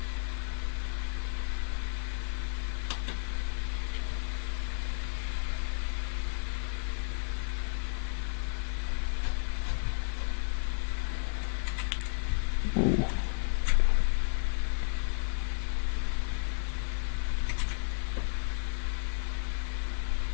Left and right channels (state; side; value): silent; right; 56 dB below the other